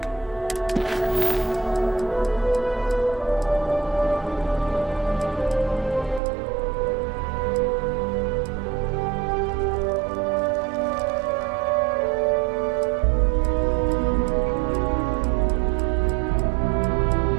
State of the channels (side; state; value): left; drops out; at 6.2 s